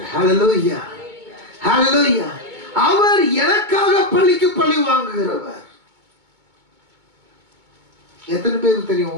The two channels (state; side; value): late; left; 2.2 ms